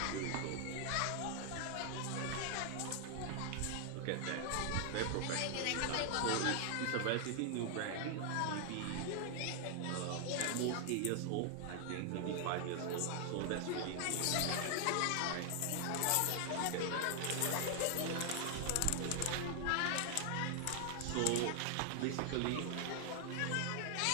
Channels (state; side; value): different; both; correlation 0.00